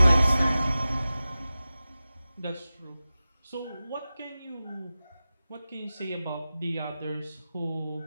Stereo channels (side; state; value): both; inverted; correlation -0.95